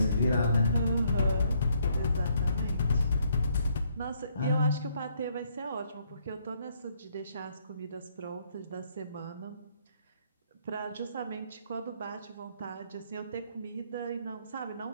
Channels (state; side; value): inverted; both; correlation -0.70